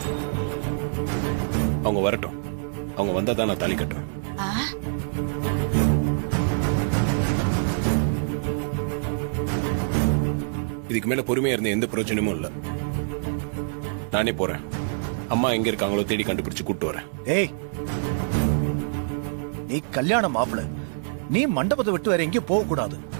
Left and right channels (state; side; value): silent; left; digital silence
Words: அவங்க வரட்டும், அவங்க வந்தா தான் நான் தாலி கட்டுவேன். இதுக்கு மேல பொறுமையா இருந்த எந்த பிரயோஜனமும் இல்ல. நானே போறேன். அம்மா எங்க இருக்காங்களோ தேடி கண்டுபிடிச்சு கூட்டு வரேன். ஏய், நீ கல்யாண மாப்பிள, நீ மண்டபத்தை விட்டு வேற எங்கேயும் போக கூடாது.